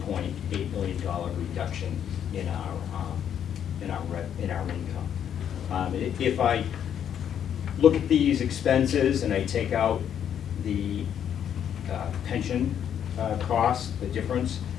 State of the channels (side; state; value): right; quieter; 9.1 dB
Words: million reduction in our income. If I look at these expenses and I take out the pension costs, the difference,